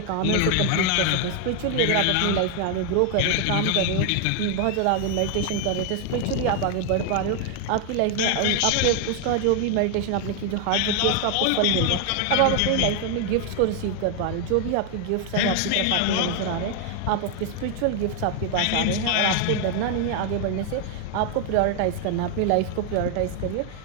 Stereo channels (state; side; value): different; both; correlation 0.00